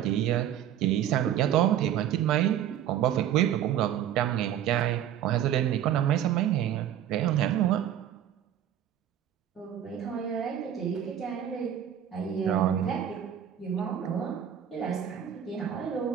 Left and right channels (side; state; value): left; quieter; 10.4 dB